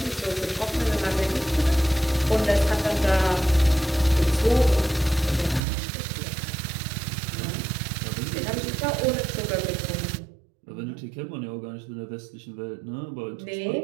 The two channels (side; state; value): left; drops out; at 5.6 s